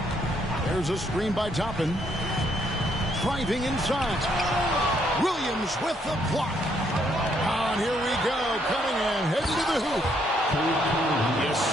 There's a screen by Toppin. Driving inside. Williams with the block. And here we go. Cunningham heading to the hoop. Yes,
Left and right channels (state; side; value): normal; both; correlation 0.72